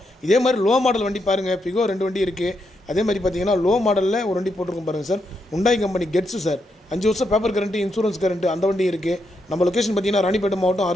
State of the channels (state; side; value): normal; both; correlation 0.81